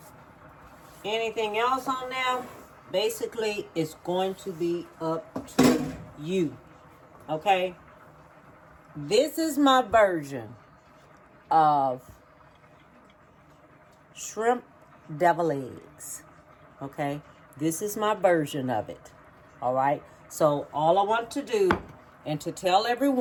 anything else on there, basically it's going to be up to you. Okay? This is my version of shrimp devil eggs. Okay? This is my version of it. All right? So all I want to do, and to tell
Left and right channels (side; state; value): both; identical; correlation 1.00